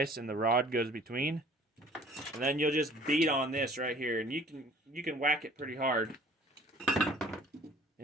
and the rod goes between. And then you'll just beat on this right here, and you can whack it pretty hard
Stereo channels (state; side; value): normal; both; correlation 0.51